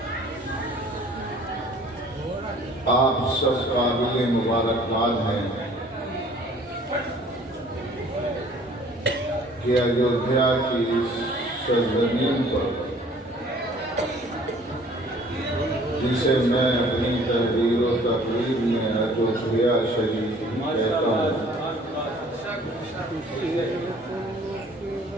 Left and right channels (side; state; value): both; normal; correlation 0.53